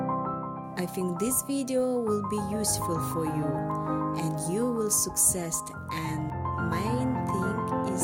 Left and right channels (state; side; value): identical; both; correlation 1.00